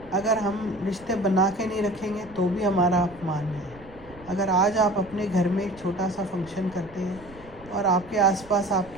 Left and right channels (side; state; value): right; noise; rumble, 22 dB below the sound